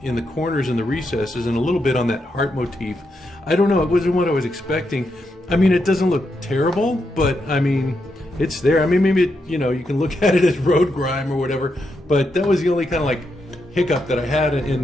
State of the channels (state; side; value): normal; both; correlation 0.83